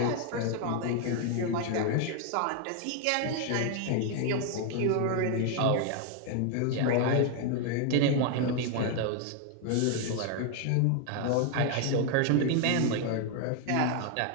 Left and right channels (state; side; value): different; both; correlation 0.01